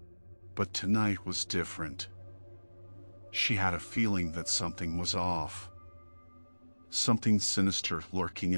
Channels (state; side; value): inverted; both; correlation -1.00